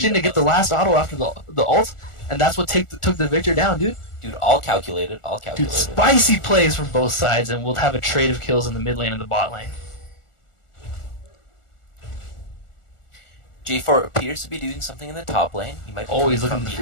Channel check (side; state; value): right; late; 1.4 ms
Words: in to get the last auto after the ult, and that's what took the Victor down, dude. Dude, all calculated. All Dude, calculated. spicy plays from both sides, and we'll have a trade of kills in the mid lane and the bot lane. J4 appears to be doing something in the top lane. He might be Oh, he's coming looking